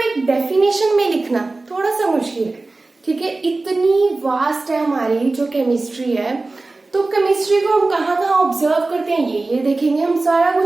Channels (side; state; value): left; quieter; 3.3 dB